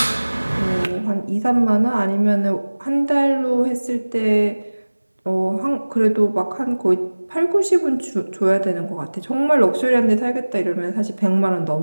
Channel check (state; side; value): inverted; both; correlation -1.00